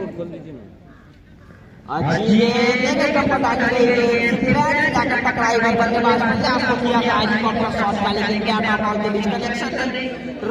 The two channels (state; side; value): identical; both; correlation 1.00